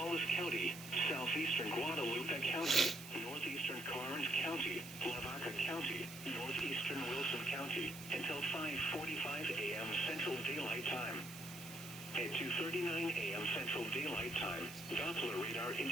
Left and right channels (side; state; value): right; noise; hiss, 13 dB below the sound